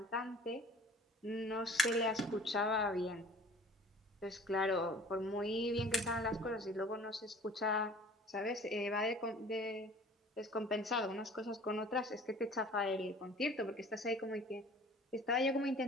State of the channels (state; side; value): normal; both; correlation 0.48